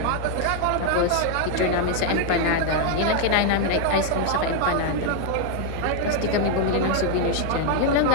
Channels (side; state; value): both; different; correlation 0.00